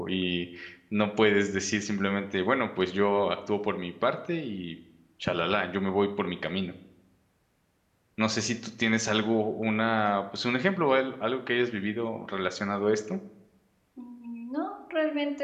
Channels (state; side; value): identical; both; correlation 1.00